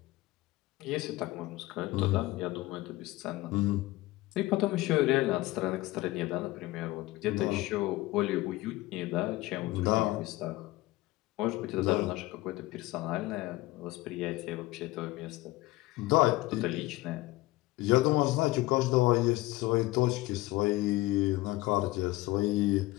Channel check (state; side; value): quieter; right; 19.0 dB